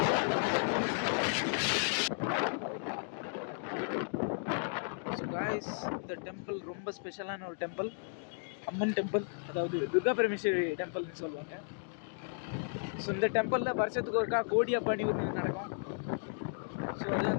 இந்த டெம்பிள் ரொம்ப ஸ்பெஷலான ஒரு டெம்பிள், அம்மன் டெம்பிள், அதாவது துர்கா பரமேஸ்வரி டெம்பிள்னு சொல்லுவாங்க. ஸோ இந்த டெம்பிளில் வருஷத்துக்கு ஒருக்கா கோடி பணி ஒன்று நடக்கும். ஸோ அது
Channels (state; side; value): silent; right; digital silence